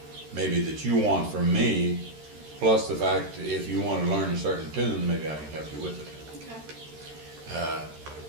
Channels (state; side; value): late; left; 13 ms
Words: maybe that you want from me, plus the fact that if you want to learn a certain tune, maybe I can help you with it. Okay.